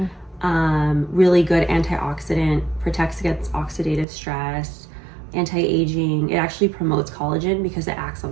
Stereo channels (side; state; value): left; drops out; at 4.0 s